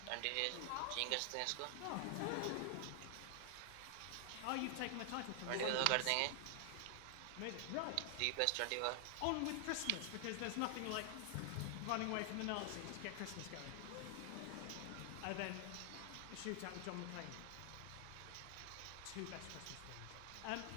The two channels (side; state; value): both; different; correlation 0.00